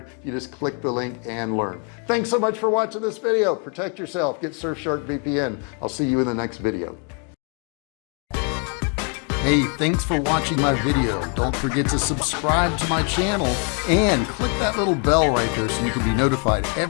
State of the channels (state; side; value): quieter; right; 38.5 dB